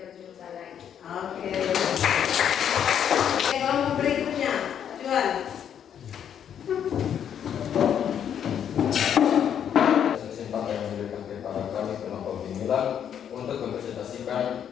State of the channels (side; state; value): right; quieter; 8.9 dB